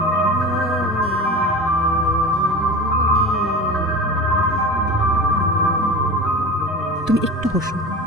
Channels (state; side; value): normal; both; correlation 0.32